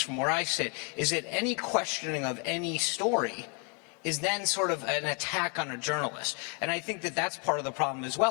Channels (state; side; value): quieter; right; 35.8 dB